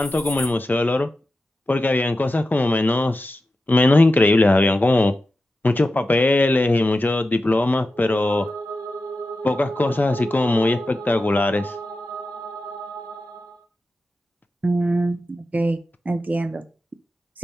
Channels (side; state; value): both; normal; correlation 0.91